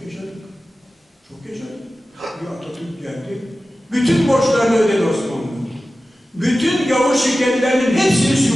yaşadık. Çok yaşadık. Bir Atatürk geldi. Bütün borçlarını ödedi Osmanlı. Bütün gavur şirketlerinin hepsini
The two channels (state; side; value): normal; both; correlation 0.95